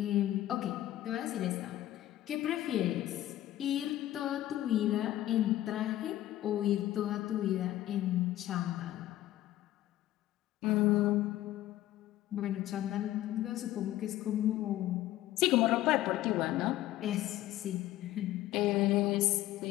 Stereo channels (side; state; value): right; quieter; 14.3 dB